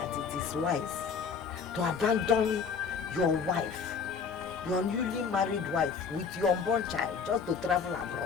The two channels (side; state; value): right; quieter; 5.8 dB